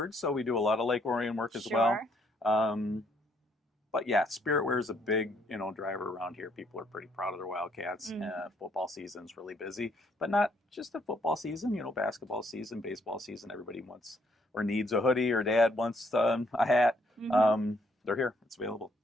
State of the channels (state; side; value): normal; both; correlation 0.69